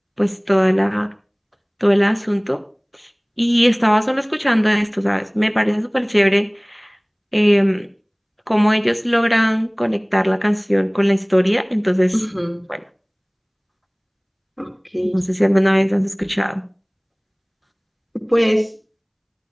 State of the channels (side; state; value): both; identical; correlation 1.00